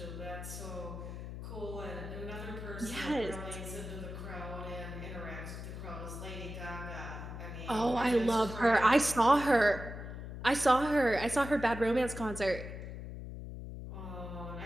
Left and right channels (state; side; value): noise; left; hum, 9 dB below the sound